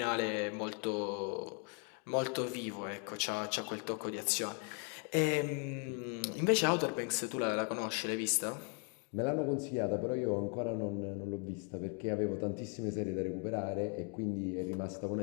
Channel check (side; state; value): right; quieter; 37.8 dB